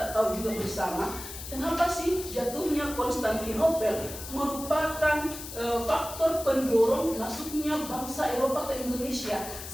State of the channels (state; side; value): noise; left; hiss, 10 dB below the sound